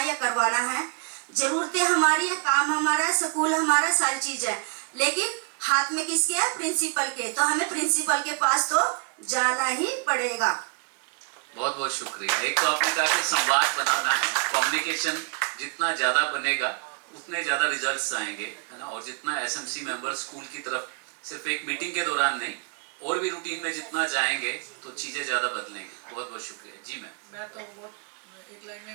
या करवाना है, जरूरतें हमारी है, काम हमारा है, स्कूल हमारा, सारी चीज है, लेकिन हाथ में किसके है? प्रिंसिपल के। तो हमें प्रिंसिपल के पास तो जाना ही पड़ेगा। बहुत बहुत शुक्रिया। एक तो आपने कहा कि संवाद बनाना है, कम्युनिकेशन जितना ज्यादा बनेगा उतने ज्यादा रिजल्ट्स आएंगे, है ना। और जितना एसएमसी मेंबर स्कूल की तरफ सिर्फ एक मीटिंग के दौरान नहीं और भी रूटीन में जितना जाएंगे तो चीजें ज्यादा बदलेंगी। बहुत बहुत शुक्रिया जी। मैं तो वो एक लाइन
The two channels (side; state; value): left; quieter; 36.1 dB